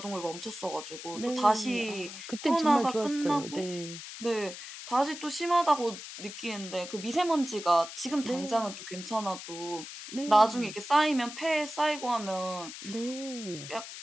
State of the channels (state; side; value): noise; left; hiss, 11 dB below the sound